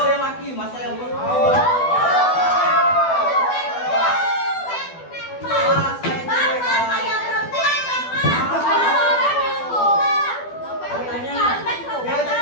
yang laki, masa yang belum.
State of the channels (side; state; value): right; late; 12 ms